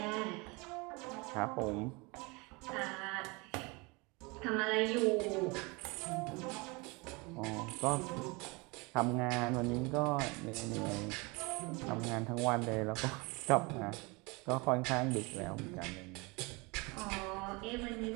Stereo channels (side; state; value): left; quieter; 27.1 dB